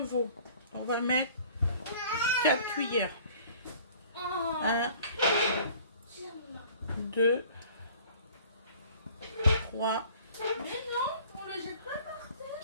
on va mettre 4 cuillères. 1, 2, 3, Mais non, on le jette pas par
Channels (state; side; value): inverted; both; correlation -0.50